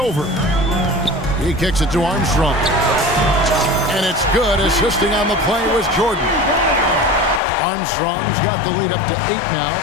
He kicks it to Armstrong. And it's good. Assisting on the play was Jordan. Armstrong's got the lead up to 8 now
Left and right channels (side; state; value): right; drops out; at 7.4 s